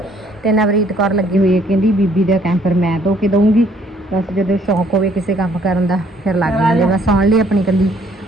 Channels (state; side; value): normal; both; correlation 0.63